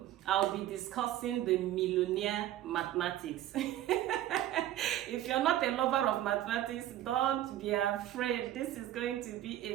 I'll be discussing the millionaire mathematics. If you're not a lover of mathematics, don't be afraid. This is going to be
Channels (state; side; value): quieter; left; 13.1 dB